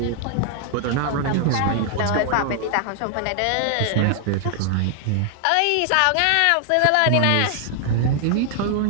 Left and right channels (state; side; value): different; both; correlation 0.00